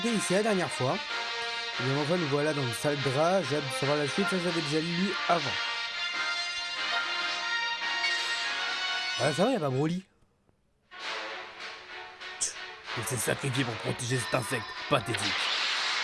ici la dernière fois. Et bien enfin, nous voilà dans le salle Dra. J'ai hâte de savoir la suite, ça j'avais déjà lu avant. Ah, ça va, y'a pas Broly. Il s'est sacrifié pour protéger cet insecte pathétique.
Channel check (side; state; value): both; identical; correlation 1.00